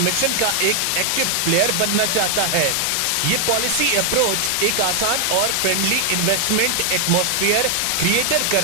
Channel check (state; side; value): different; both; correlation 0.00